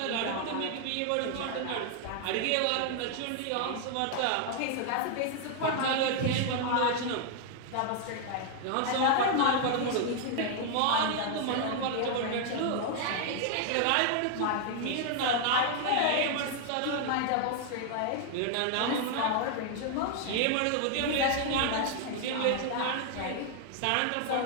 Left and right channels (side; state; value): both; different; correlation 0.00